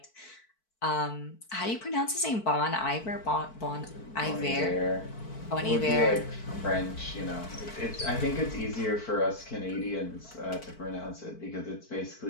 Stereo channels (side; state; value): right; late; 4.5 ms